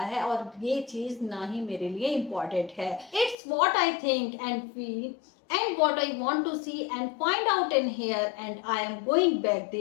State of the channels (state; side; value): drops out; right; at 3.4 s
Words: है और ये चीज ना ही मेरे लिए इम्पोर्टेंट है। It's what I think and feel and what I want to see and find out in here, and I am going back